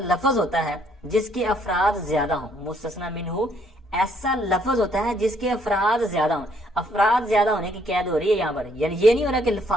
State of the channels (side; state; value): both; normal; correlation 0.67